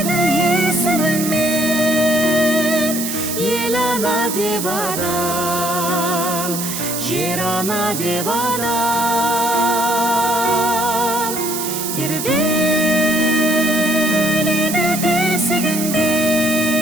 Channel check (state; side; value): noise; right; hiss, 4 dB below the sound